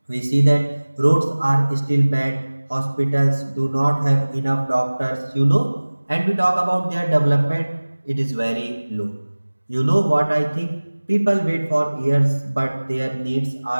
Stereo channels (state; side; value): inverted; both; correlation -1.00